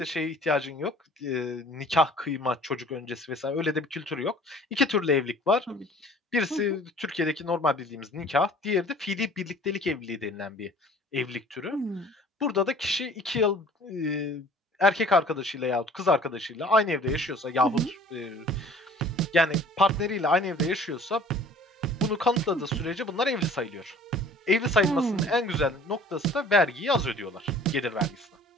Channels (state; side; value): normal; both; correlation 0.50